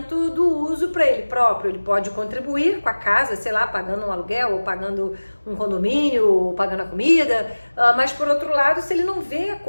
do uso para ele próprio. Ele pode contribuir com a casa, sei lá, pagando um aluguel, ou pagando um condomínio, ou pagando a comida, mas por outro lado, se ele não vê a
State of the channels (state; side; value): inverted; both; correlation -1.00